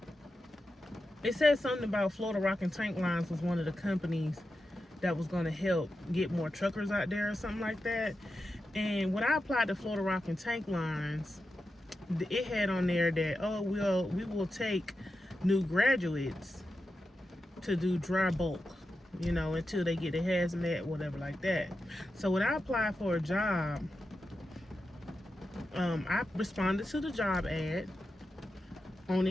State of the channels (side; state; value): both; normal; correlation 0.90